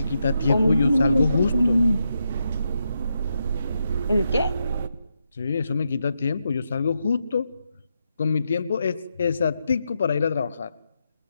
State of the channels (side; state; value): both; inverted; correlation -0.84